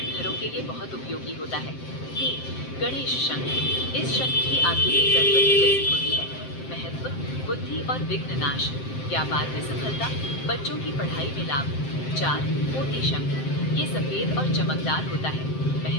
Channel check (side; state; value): right; late; 7.7 ms